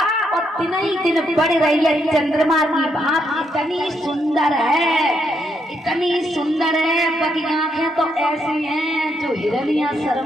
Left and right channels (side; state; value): both; normal; correlation 0.77